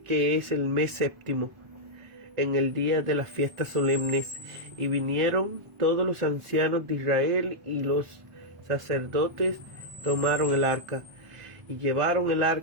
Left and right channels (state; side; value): late; left; 1.0 ms